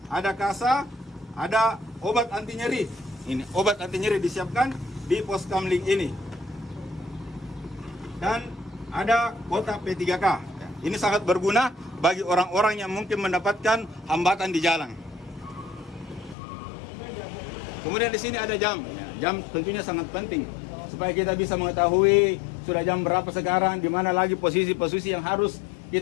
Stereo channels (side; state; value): right; drops out; at 16.4 s